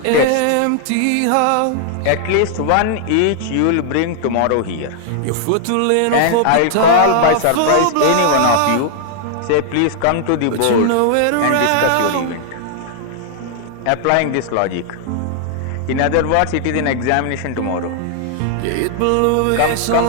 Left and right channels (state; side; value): different; both; correlation 0.00